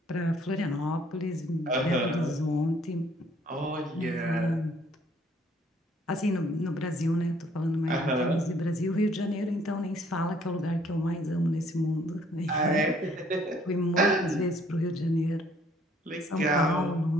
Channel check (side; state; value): both; normal; correlation 0.62